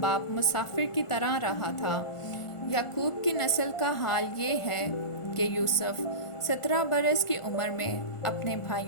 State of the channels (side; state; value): right; late; 1.4 ms